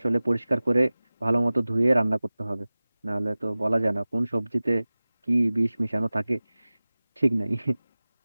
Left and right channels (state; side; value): inverted; both; correlation -0.98